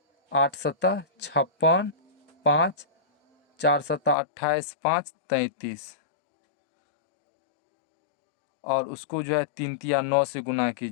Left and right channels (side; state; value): right; drops out; at 4.2 s